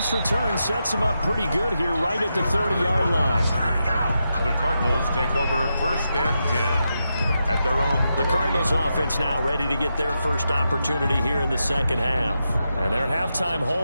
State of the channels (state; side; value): inverted; both; correlation -0.86